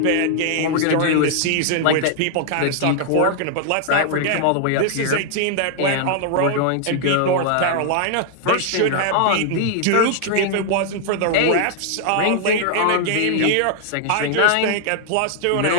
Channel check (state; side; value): different; both; correlation 0.00